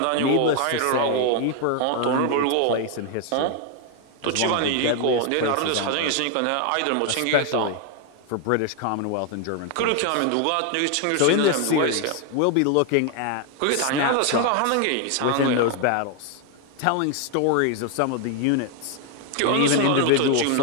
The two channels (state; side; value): different; both; correlation 0.01